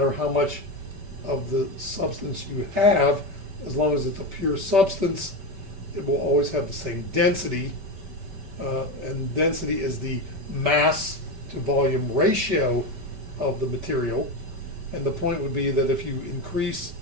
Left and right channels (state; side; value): late; left; 5.1 ms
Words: how much of the substance you have, as long as it's a pure substance, it will always have the same density. and density is the mass to volume ratio of the material. And the point would be that if you increase